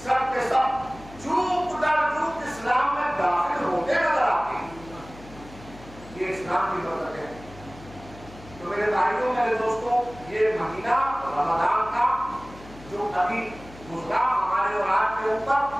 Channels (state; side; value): noise; left; hum, 19 dB below the sound